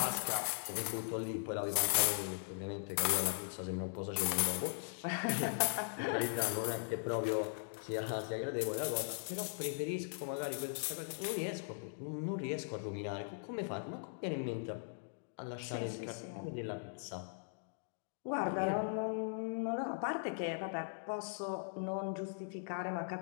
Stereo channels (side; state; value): right; silent; digital silence